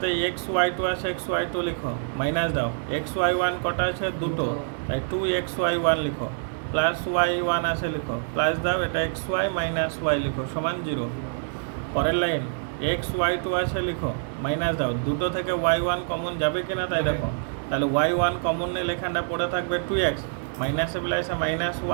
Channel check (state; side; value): silent; left; 61 dB below the other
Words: এক্স ওয়াই টু আছে, এক্স ওয়াই টু লিখো, মাইনাস দাও, এক্স ওয়াই ওয়ান কটা আছে? দুটো, তাই 2xy1 লিখো, প্লাস y1 আছে লিখো, প্লাস দাও, এটা xy মাইনাস y লিখো সমান 0। পরের লাইন xy2 আছে লিখো, মাইনাস দাও, দুটো থেকে y1 কমন যাবে কিনা তাই দেখো, তাহলে y1 কমন নিলে এখানটা পড়ে থাকবে 2x, মাইনাসে প্লাসে মাইনাস